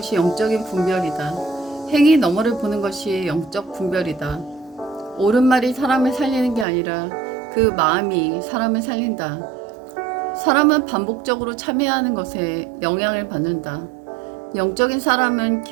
영적인 분별이다. 행위 너머를 보는 것이 영적 분별이다. 옳은 말이 사람을 살리는 게 아니라 그 마음이 사람을 살린다. 사람은 반복적으로 참여하는 것에 영향을 받는다. 영적인 사람은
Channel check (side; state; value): left; drops out; at 6.7 s